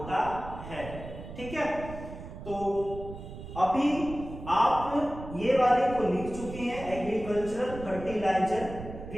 है। ठीक है, तो अभी आप ये वाले को लिख चुके हैं, एग्रीकल्चरल फर्टिलाइजर,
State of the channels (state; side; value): noise; right; rumble, 12 dB below the sound